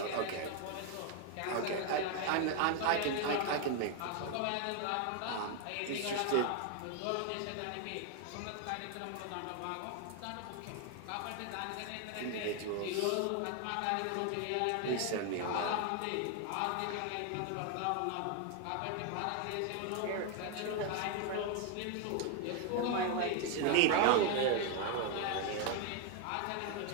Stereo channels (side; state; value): both; different; correlation 0.01